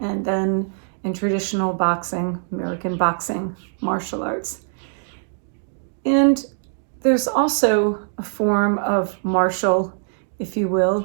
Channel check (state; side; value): silent; left; digital silence